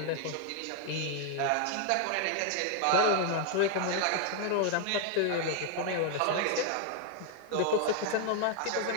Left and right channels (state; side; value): different; both; correlation 0.00